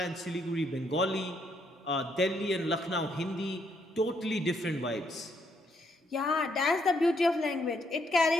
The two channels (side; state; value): both; normal; correlation 0.74